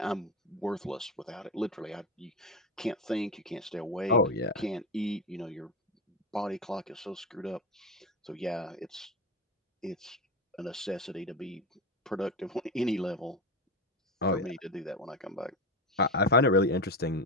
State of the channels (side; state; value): both; normal; correlation 0.18